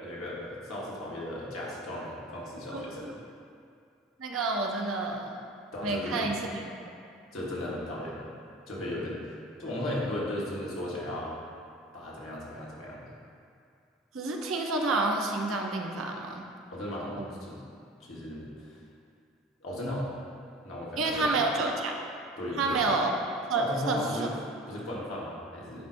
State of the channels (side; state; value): both; normal; correlation 0.39